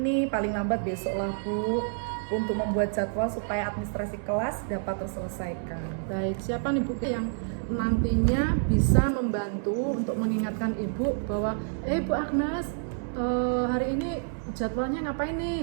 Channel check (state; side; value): silent; left; 59 dB below the other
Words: paling lambat besok lah Bu, untuk membuat jadwal supaya administrasi kelas dapat terselesaikan. Baik, siapa nih Bu yang nantinya bisa membantu untuk mengingatkan Ibu bahwa Bu Agnes, hari ini jadwalnya ngapain